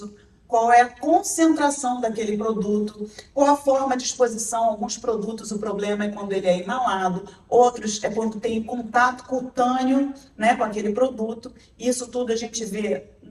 qual é a concentração daquele produto, qual a forma de exposição. Alguns produtos, o problema é quando ele é inalado, outros é quando tem contato cutâneo, né, com aquele produto. Isso tudo a gente vê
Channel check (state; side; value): identical; both; correlation 1.00